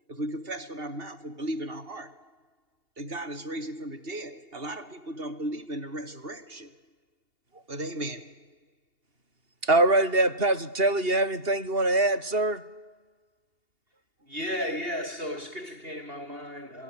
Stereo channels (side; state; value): left; late; 2.8 ms